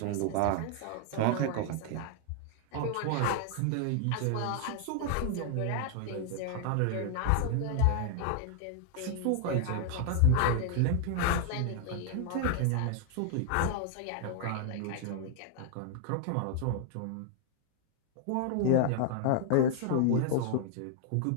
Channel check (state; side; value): different; both; correlation 0.00